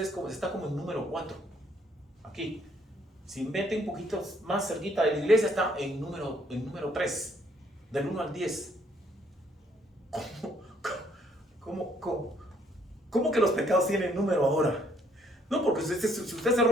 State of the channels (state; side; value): normal; both; correlation 0.66